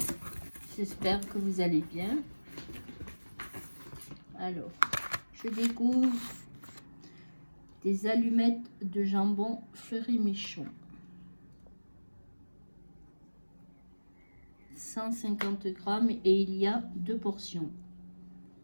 J'espère que vous allez bien. Alors, je découvre des allumettes de jambon Fleury-Michon. 150 grammes et il y a 2 portions.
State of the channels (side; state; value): both; inverted; correlation -1.00